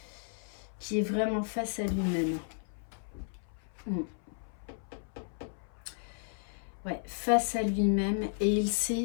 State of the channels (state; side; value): silent; right; 55 dB below the other